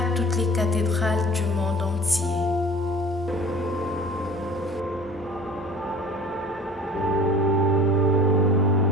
toutes les cathédrales du monde entier.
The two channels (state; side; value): normal; both; correlation 0.44